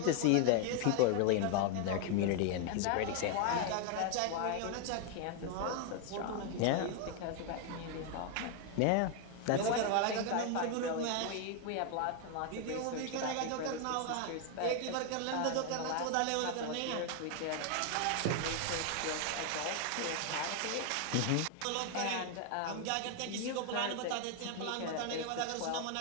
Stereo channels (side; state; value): both; different; correlation 0.01